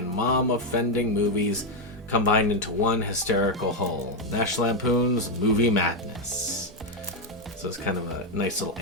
mom-offending movies combined into one hysterical whole. National Lampoon's Movie Madness. So it's kind of a nice little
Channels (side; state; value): both; normal; correlation 0.04